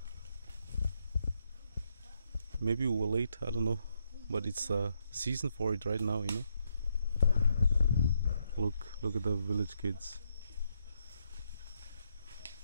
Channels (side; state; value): both; inverted; correlation -0.78